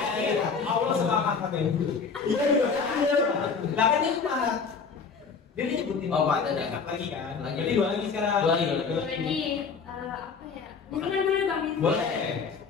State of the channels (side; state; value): right; quieter; 5.4 dB